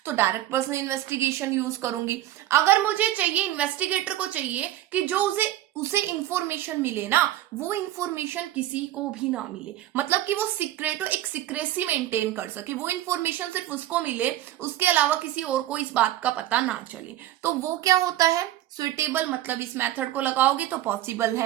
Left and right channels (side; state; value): left; quieter; 13.9 dB